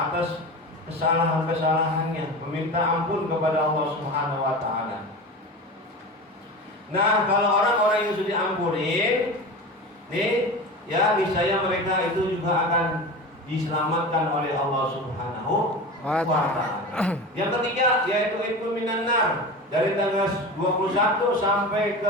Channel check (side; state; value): both; normal; correlation 0.29